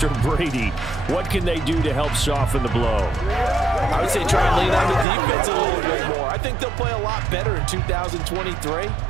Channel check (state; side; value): drops out; left; at 5.1 s